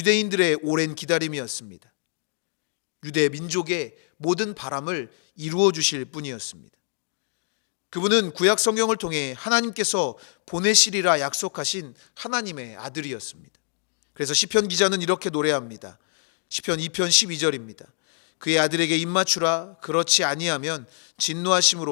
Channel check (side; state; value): right; silent; 62 dB below the other